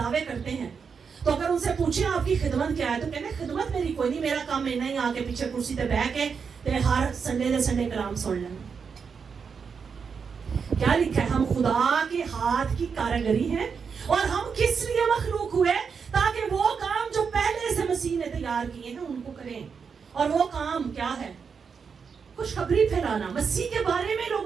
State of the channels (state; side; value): quieter; left; 6.0 dB